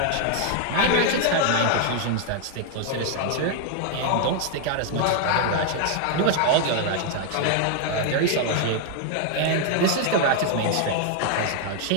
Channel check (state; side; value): different; both; correlation 0.00